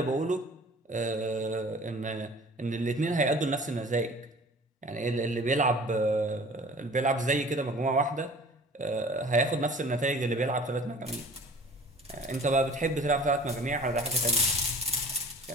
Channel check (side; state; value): both; normal; correlation 0.47